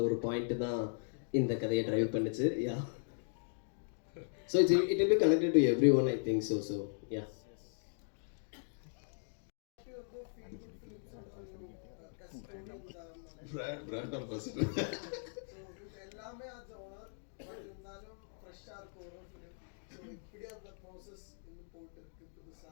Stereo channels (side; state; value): right; silent; digital silence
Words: ஒரு பாயிண்ட்டு தான் இந்த கதையை ட்ரைவ் பண்ணுச்சு. Yeah so it will be connected to every one, I think so. So yeah brand ambassador எல்லாமே அது ஓனர். பட் இருந்தாலும் ஃப்ரெஷ்ஷாக இருக்கும் ஒரு ஃபிலிம். ஸோ இப்படி அந்த ப்ராசஸ் இன்னும் போட்டு இருக்கு